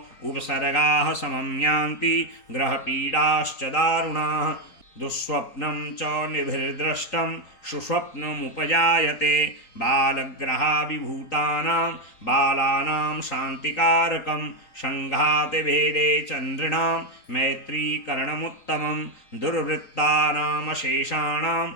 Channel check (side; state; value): right; late; 3.9 ms